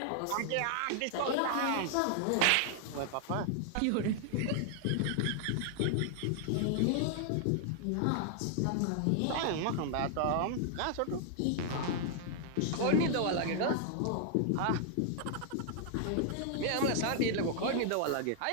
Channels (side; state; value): both; different; correlation 0.00